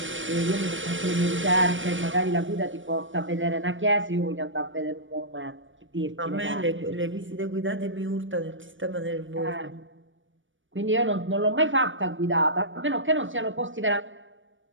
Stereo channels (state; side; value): late; left; 0.56 ms